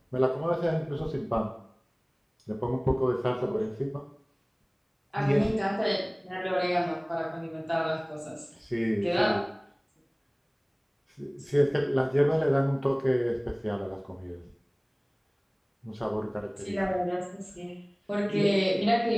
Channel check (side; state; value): both; identical; correlation 1.00